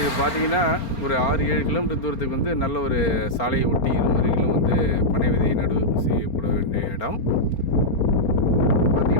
பார்த்திங்கன்னா ஒரு 6-7 கிலோமீட்டர் தூரத்துக்கு நல்ல ஒரு சாலையை ஒட்டி இருமருகிலும் பனை விதை நடவு செய்யப்பட வேண்டிய இடம்.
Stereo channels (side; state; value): right; late; 4.4 ms